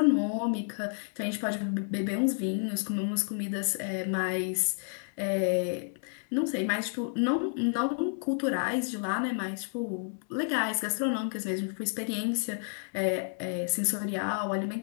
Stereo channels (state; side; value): silent; right; 57 dB below the other